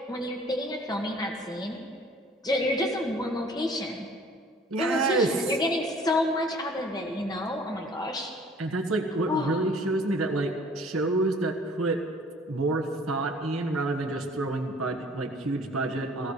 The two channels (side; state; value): both; normal; correlation 0.53